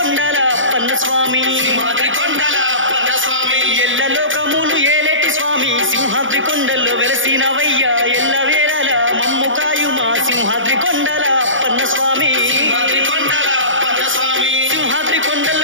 అప్పన్న స్వామి, సింహాద్రి కొండల అప్పన్న స్వామి. ఎల్లలోకములు ఏలేటి స్వామి సింహాద్రి కొండల్లో వెలిసినవయ్యా, ఎల్లవేళలా మమ్ము కాయుమా సింహాద్రి కొండల అప్పన్న స్వామి, సింహాద్రి కొండల అప్పన్న స్వామి. సింహాద్రి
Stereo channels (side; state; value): left; late; 0.57 ms